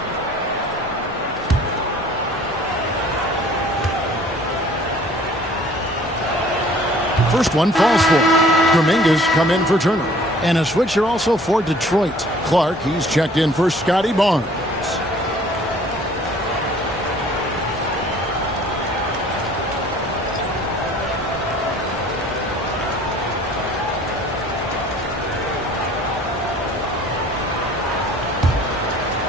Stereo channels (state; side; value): normal; both; correlation 0.53